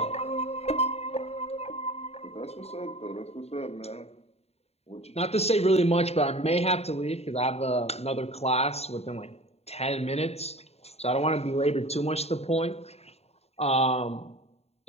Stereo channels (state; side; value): late; right; 0.30 ms